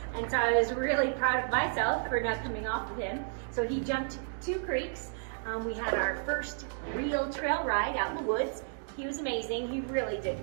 And so I was really proud of myself for not coming off of him. So he jumped 2 creeks. We had our first real trail ride out in the woods. He was amazing. He really did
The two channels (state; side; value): silent; left; digital silence